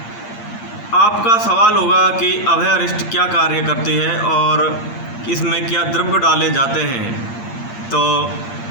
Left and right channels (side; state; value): right; late; 8.6 ms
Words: आपका सवाल होगा कि अभयारिष्ट क्या कार्य करती है और इसमें क्या द्रव्य डाले जाते हैं। तो